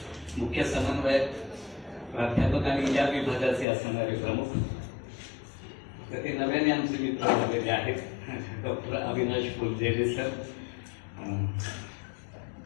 मुख्य समन्वयक प्राध्यापक आणि या विभागाचे असणारे प्रमुख तर ते नव्याने आमचे मित्र झालेले आहेत डॉक्टर अविनाश फुलझेले सर.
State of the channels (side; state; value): right; drops out; at 3.7 s